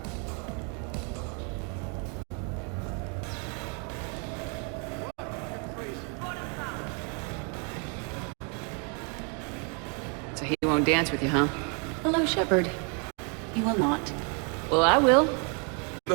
So he won't dance with you, huh? Hello, Shepard. You will not. Well, I will.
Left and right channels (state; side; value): quieter; left; 37.0 dB